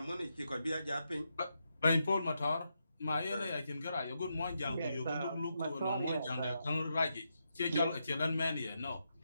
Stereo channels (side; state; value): both; inverted; correlation -0.83